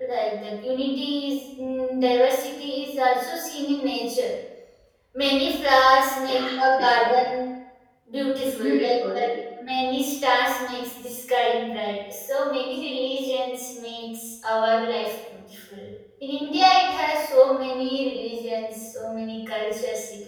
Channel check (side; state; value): both; identical; correlation 1.00